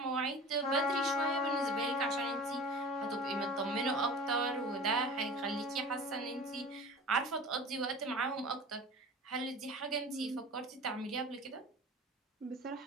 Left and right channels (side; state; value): both; normal; correlation 0.38